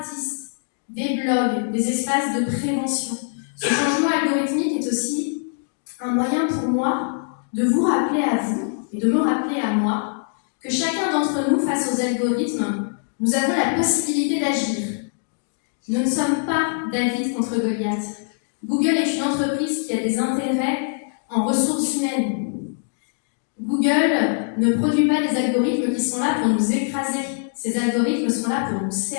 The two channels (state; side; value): silent; right; 63 dB below the other